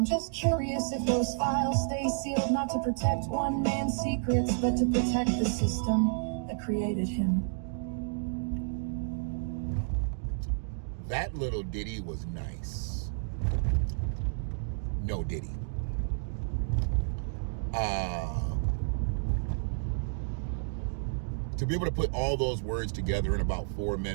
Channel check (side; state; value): left; silent; digital silence